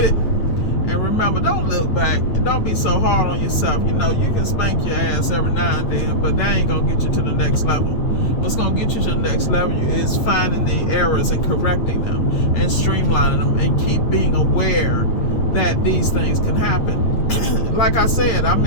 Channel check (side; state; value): right; late; 8.5 ms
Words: it. And remember, don't look back. And don't be so hard on yourself. You know, you can spank your ass every now and then, but that ain't going to get you to the next level. What's going to get you to the next level is finding the errors and correcting them and streamlining them and keep being aware that these things can happen. Like I said, I